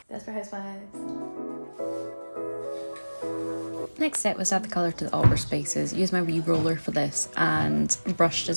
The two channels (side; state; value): both; inverted; correlation -1.00